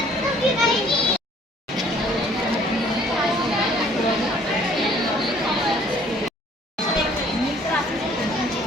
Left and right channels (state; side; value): normal; both; correlation 0.58